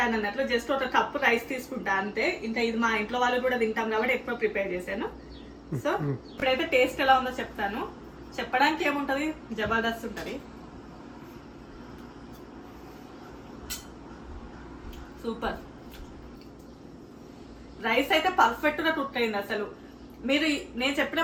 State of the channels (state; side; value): identical; both; correlation 1.00